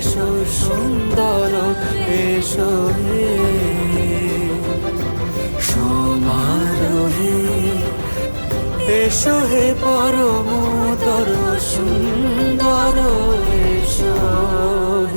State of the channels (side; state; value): both; inverted; correlation -1.00